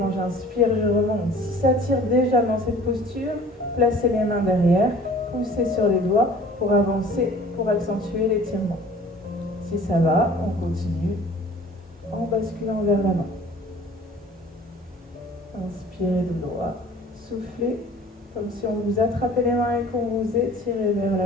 j'inspire, je remonte. Si ça tire déjà dans cette posture, placez les mains derrière, poussez sur les doigts pour avancer, pour accentuer l'étirement. Si ça va, on continue en basculant vers l'avant. Inspirez de droit, soufflez comme si on vous attrapait les mains et qu'on vous étirait vers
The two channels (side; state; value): both; normal; correlation 0.48